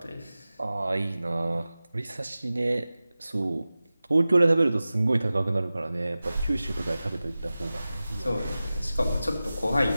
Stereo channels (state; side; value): inverted; both; correlation -0.96